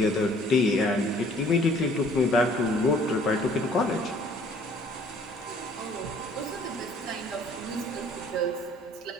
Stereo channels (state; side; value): normal; both; correlation 0.56